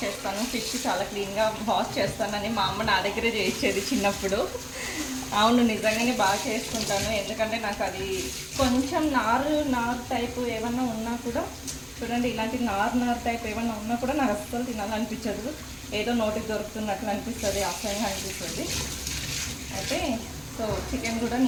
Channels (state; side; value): identical; both; correlation 1.00